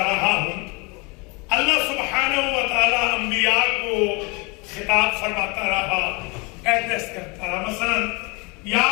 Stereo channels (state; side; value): quieter; right; 28.8 dB